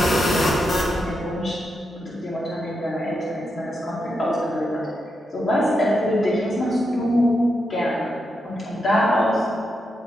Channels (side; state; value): both; normal; correlation 0.84